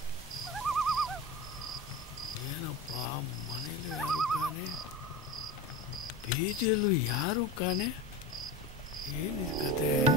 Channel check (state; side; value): normal; both; correlation 0.28